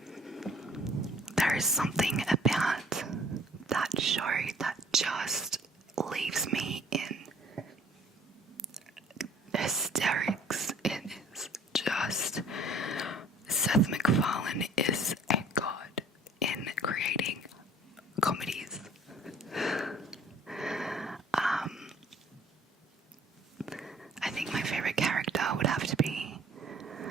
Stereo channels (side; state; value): both; normal; correlation 0.54